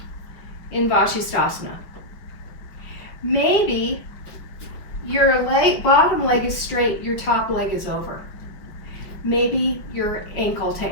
in Vashisthasana. Maybe your bottom leg is straight, your top leg is over. Maybe you're ankle to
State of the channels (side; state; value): right; late; 5.3 ms